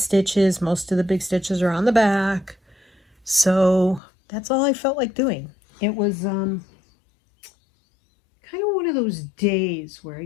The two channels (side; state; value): right; drops out; at 4.0 s